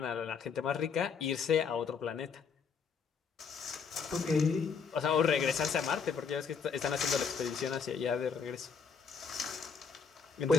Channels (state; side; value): quieter; right; 5.9 dB